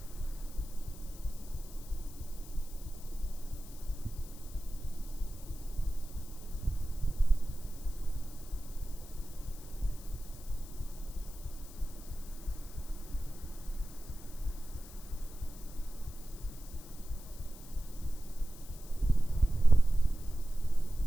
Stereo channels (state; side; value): noise; left; hiss, 18 dB below the sound